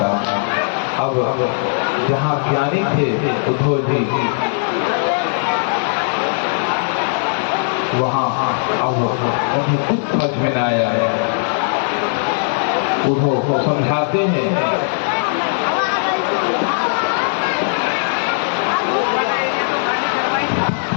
हूँ। अब जहाँ ज्ञानी थे उद्धव जी, वहाँ अब उन्हें कुछ समझ में न आया है। उद्धव को समझाते हैं,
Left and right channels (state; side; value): silent; right; 67 dB below the other